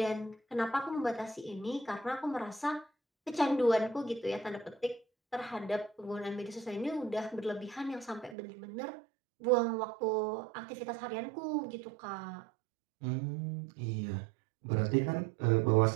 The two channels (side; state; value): left; drops out; at 8.3 s